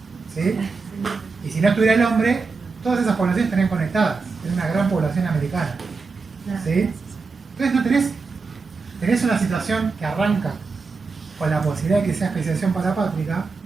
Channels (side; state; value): left; quieter; 4.5 dB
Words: ¿Sí? Y si no estuviera el hombre, todas esas poblaciones estarían conectadas. Es una gran población americana. ¿Sí? Entonces no tenés una situación que arranca con la posibilidad de que sea especiación parapátrica,